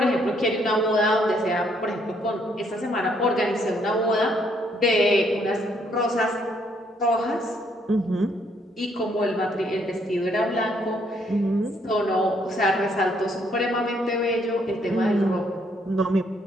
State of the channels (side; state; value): both; normal; correlation 0.70